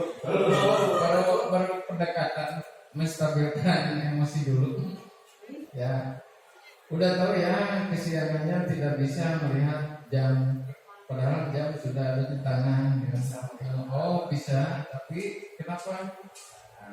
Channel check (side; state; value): both; identical; correlation 1.00